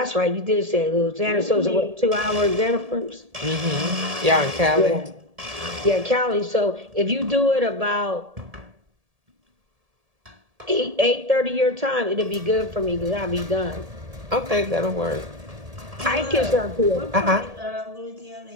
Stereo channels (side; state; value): left; late; 1.7 ms